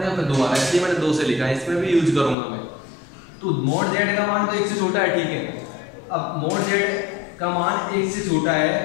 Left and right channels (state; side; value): drops out; right; at 2.4 s